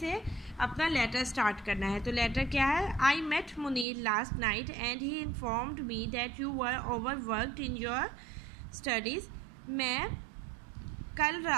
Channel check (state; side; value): drops out; left; at 3.9 s